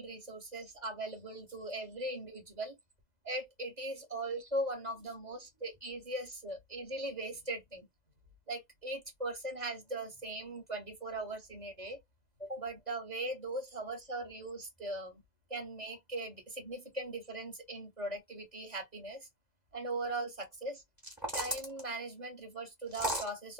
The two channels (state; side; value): late; right; 2.0 ms